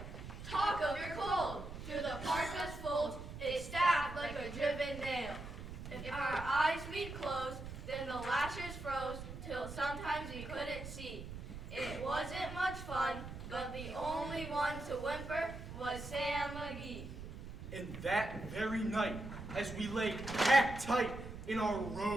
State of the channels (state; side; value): noise; right; rumble, 10 dB below the sound